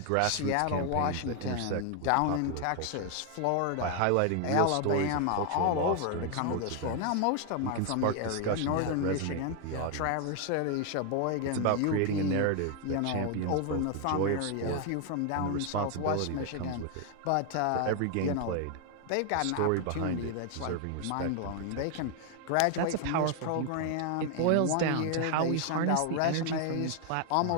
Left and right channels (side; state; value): both; different; correlation 0.00